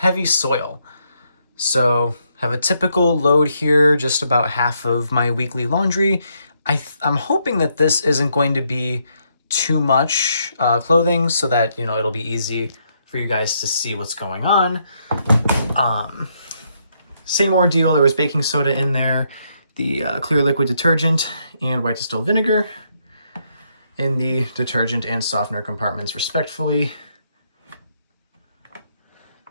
soil. So, have a typical load here, just about half of my weekly laundry. I'm hoping that this isn't going to be too much clothing, so that it'll be easy for you guys to see what's going on. Same ordeal. There was baking soda in there, the clear liquid detergent, and white distilled vinegar in the detergent and softener compartments, respectively.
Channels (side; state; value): both; inverted; correlation -0.76